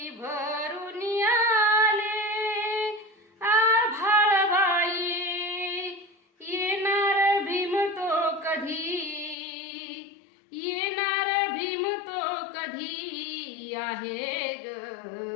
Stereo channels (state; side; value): drops out; right; at 9.3 s